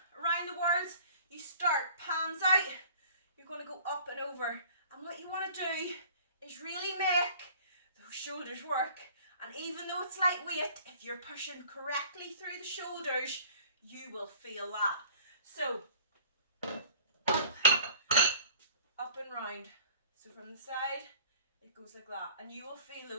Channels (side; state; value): both; inverted; correlation -0.50